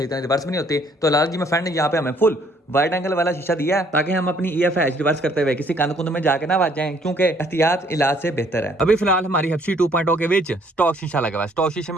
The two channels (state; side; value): normal; both; correlation 0.63